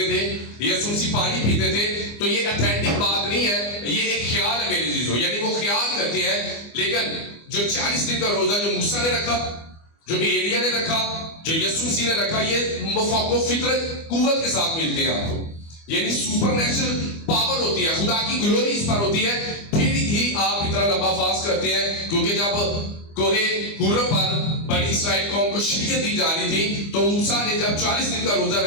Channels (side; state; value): right; late; 25 ms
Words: تھے, یسوع مسیح پانی پیتے تھے. تو یہ اتھینٹک بات نہیں ہے, یہ ایک خیال ہے میرے عزیزو. یعنی وہ خیال کرتے ہیں. لیکن جو 40 دن کا روزہ جو موسیٰ نے رکھا, جو ایلیا نے رکھا, جو یسوع مسیح نے رکھا, یہ مفاق و فطرت قوت کے ساتھ ملتے ہیں آپ کو. یعنی سپر نیچرل پاور ہوتی ہے, خدا کی گلوری اس پر ہوتی ہے, پھر ہی آپ اتنا لمبا فاسٹ کرتے ہیں. کیونکہ جب کوہ حور پر بنی اسرائیل قوم کو شریعت دی جا رہی تھی تو موسیٰ نے جب 40 دن کا روزہ